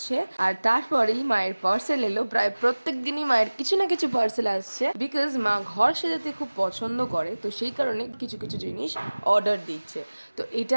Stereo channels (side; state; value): both; inverted; correlation -1.00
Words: আর তারপরেই মায়ের পার্সেল এলো। প্রায় প্রত্যেক দিনই মায়ের কিছু না কিছু পার্সেল আসছে, বিকজ মা ঘর সাজাতে খুব পছন্দ করে, তো সেই কারণে কিছু কিছু জিনিস অর্ডার দিচ্ছে। তো